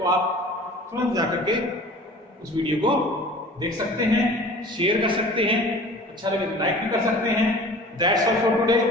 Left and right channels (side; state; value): both; normal; correlation 0.43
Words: आप तुरंत जाकर के उस वीडियो को देख सकते हैं, शेयर कर सकते हैं, अच्छा लगे तो लाइक भी कर सकते हैं। That's all for today,